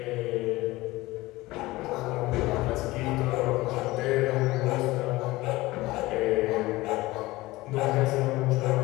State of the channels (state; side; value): quieter; right; 19.6 dB